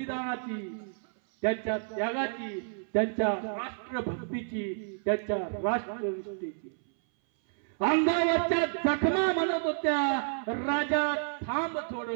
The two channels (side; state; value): left; silent; 58 dB below the other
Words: त्यांच्या त्यागाची, त्यांच्या राष्ट्रभक्तीची, त्यांच्या राष्ट्रनिष्ठेची। अंगावरच्या जखमा म्हणत होत्या राजा थांब